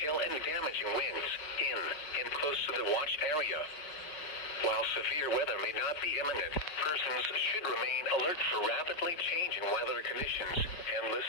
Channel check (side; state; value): right; late; 5.0 ms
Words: and damaging winds in and close to the watch area. While severe weather may not be imminent, persons should remain alert for rapidly changing weather conditions and